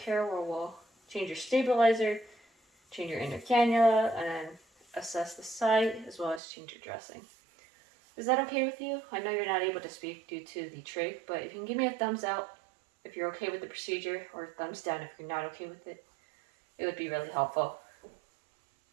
care, where we'll change your stabilizer, change your inner cannula, and then assess the site, as well as change your dressing. Is that okay with you? I know you're not able to speak due to the trach, but if you can give me a thumbs up if you're okay with the procedure, or a thumbs down if you're not okay with it, it would be really helpful.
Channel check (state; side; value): drops out; left; at 6.4 s